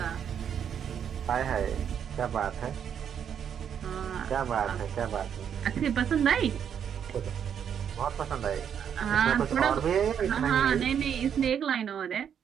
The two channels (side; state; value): left; quieter; 8.3 dB